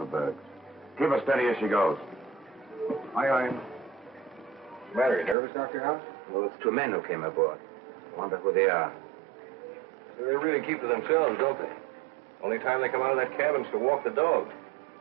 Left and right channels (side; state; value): left; drops out; at 5.4 s